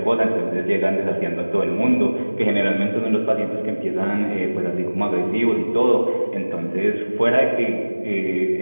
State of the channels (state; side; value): inverted; both; correlation -1.00